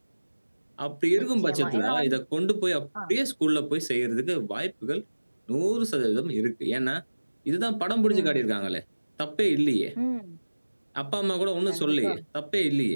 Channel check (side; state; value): both; inverted; correlation -1.00